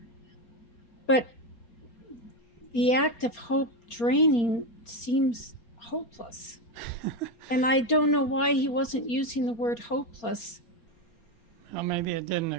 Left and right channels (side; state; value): right; late; 4.3 ms